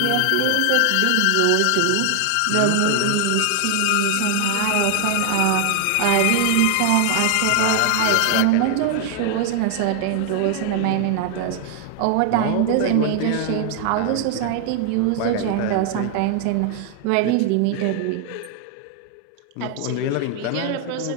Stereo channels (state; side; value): different; both; correlation 0.00